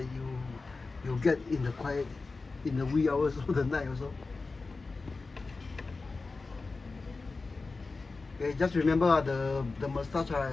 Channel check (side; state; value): right; quieter; 3.9 dB